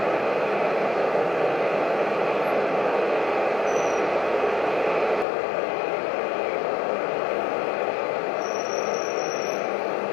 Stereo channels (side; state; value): right; drops out; at 5.2 s